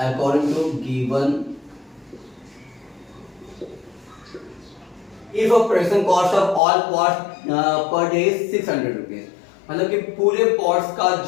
to given, if production cost of all pots per day is 600 rupees, मतलब कि पूरे पॉट्स का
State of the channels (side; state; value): right; drops out; at 6.6 s